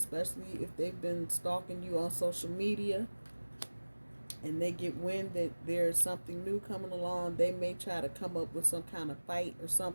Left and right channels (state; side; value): inverted; both; correlation -1.00